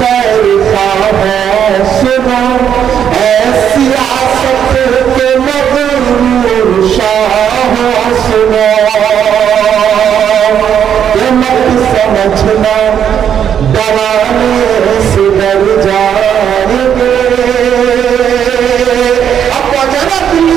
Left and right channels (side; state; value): left; quieter; 8.8 dB